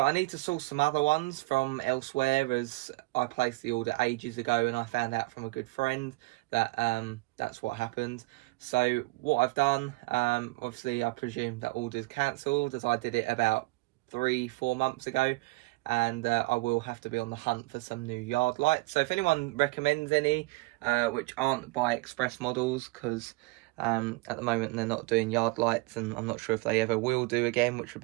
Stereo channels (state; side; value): quieter; left; 23.2 dB